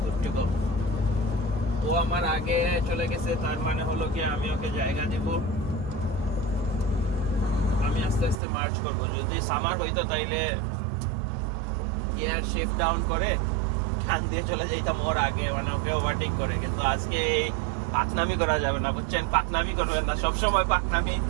গুড টু গো। ও আমার আগে চলে গেছে, তার মানে হলো কি আমি ওকে জায়গা দিব, আমি আস্তে আস্তে মার্চ করবো। যদি সামার হইতো তাইলে গিয়ার শিফট ডাউন করে টান দিয়ে চলে যাইতাম ওর আগে, মানে ওকে ওভারটেক করে। কিন্তু আজকে পাকনামি করা যাবে না, বুঝছেন, পাকনামি করবেন না, সবসময় পাকনামি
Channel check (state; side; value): drops out; left; at 8.4 s